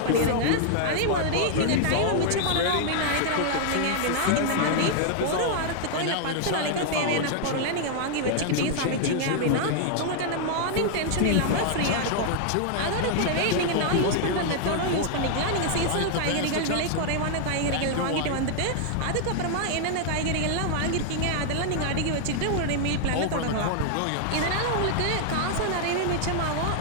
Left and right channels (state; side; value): different; both; correlation 0.00